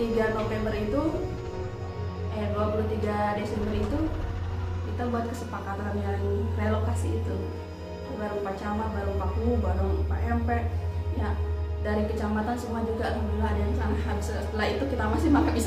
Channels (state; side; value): identical; both; correlation 1.00